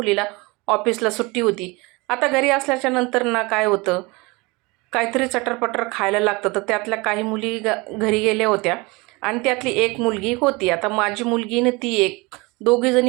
ऑफिसला सुट्टी होती. आता घरी असल्याच्या नंतर ना काय होतं, काहीतरी चटरपटर खायला लागतं. तर त्यातल्या काही मुली घरी गेल्या होत्या आणि त्यातली एक मुलगी होती. आता माझी मुलगी आणि ती एक, दोघी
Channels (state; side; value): quieter; left; 25.2 dB